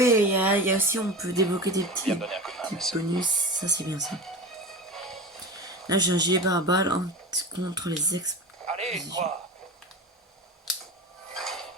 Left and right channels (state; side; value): normal; both; correlation 0.29